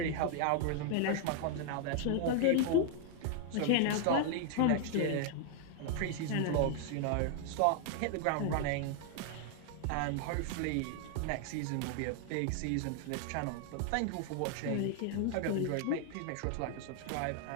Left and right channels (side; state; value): both; different; correlation 0.00